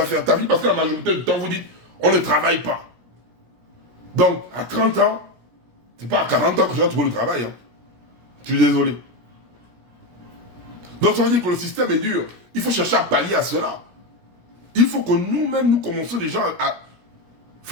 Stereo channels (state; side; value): late; left; 17 ms